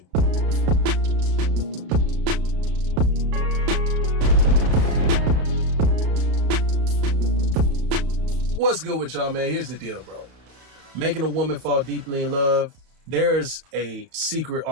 What's good with y'all, man? Here's the deal, bro. Making a woman fall deeply in love, there's a secret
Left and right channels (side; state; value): left; late; 32 ms